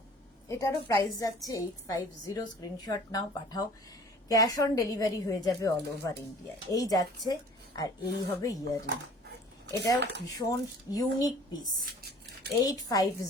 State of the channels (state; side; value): normal; both; correlation 0.49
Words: এটারও প্রাইস যাচ্ছে 850। স্ক্রিনশট নাও, পাঠাও। ক্যাশ অন ডেলিভারি হয়ে যাবে অল ওভার ইন্ডিয়া। এই যাচ্ছে, আর এই হবে ইয়াররিং। এটা ভীষণ ইউনিক পিস।